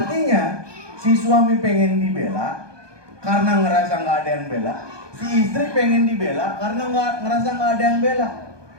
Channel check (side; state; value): left; late; 1.2 ms